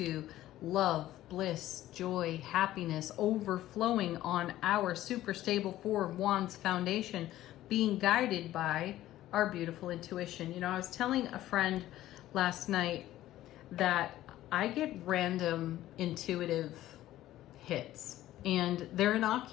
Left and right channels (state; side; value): quieter; right; 14.4 dB